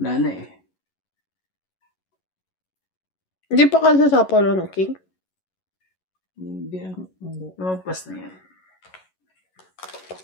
na, eh. Hindi pa ka sasapaw ng king? Hindi. Hindi. Lumagpas na yan.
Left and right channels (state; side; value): late; right; 11 ms